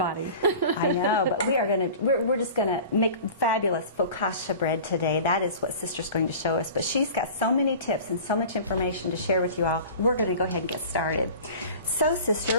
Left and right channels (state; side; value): inverted; both; correlation -0.40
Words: I know, but we're just gonna make fabulous focaccia bread today. That is what Sister's going to show us. But she's got so many tips and so much information to share with you all. We're gonna go ahead and get started. So,